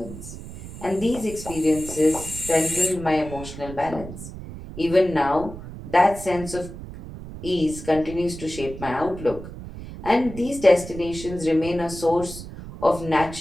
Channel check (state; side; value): noise; right; rumble, 12 dB below the sound